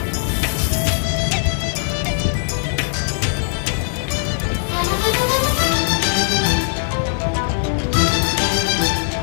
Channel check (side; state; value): right; silent; digital silence